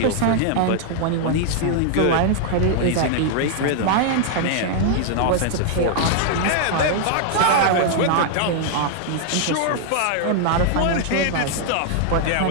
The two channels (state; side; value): different; both; correlation -0.01